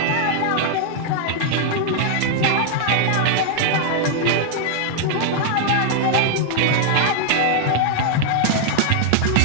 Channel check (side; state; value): both; different; correlation 0.00